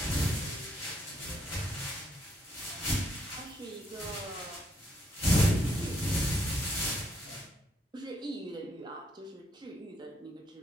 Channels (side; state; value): both; normal; correlation 0.73